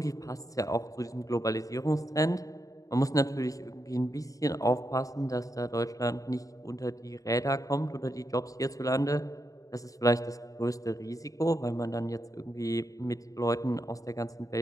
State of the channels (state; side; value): late; right; 0.16 ms